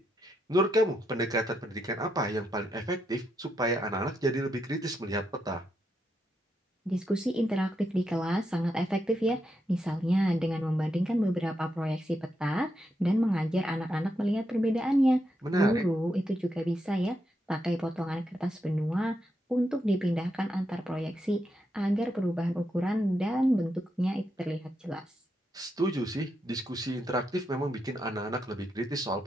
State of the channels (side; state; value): both; normal; correlation 0.82